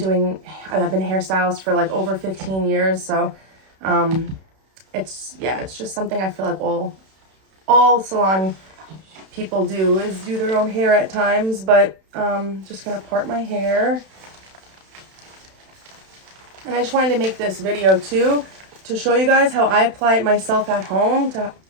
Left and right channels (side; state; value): left; late; 31 ms